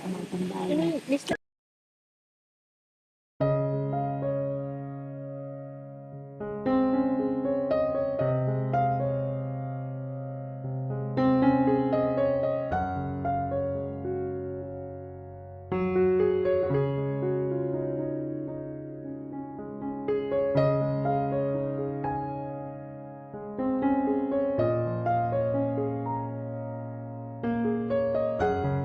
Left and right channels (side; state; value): both; identical; correlation 1.00